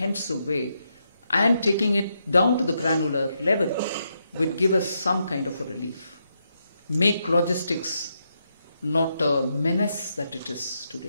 way and taking it down to the granular level, would give us some kind of a relief. Make logistics not a menace that it is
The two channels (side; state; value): both; inverted; correlation -0.81